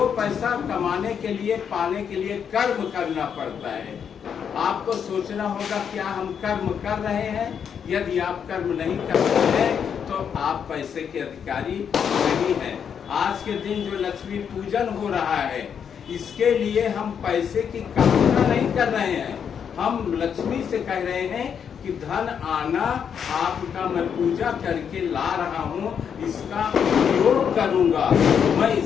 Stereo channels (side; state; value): right; quieter; 7.6 dB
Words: पैसा कमाने के लिए, पाने के लिए कर्म करना पड़ता है। आपको सोचना होगा क्या हम कर्म कर रहे हैं। यदि आप कर्म नहीं कर रहे हैं तो आप पैसे के अधिकारी नहीं हैं। आज के दिन जो लक्ष्मी पूजन हो रहा है इसके लिए हम पैसे की कामना नहीं कर रहे हैं। हम लक्ष्मी से कह रहे हैं कि धन आना आपका मैं पूजा करके ला रहा हूँ, इसका उपयोग करूंगा, मैं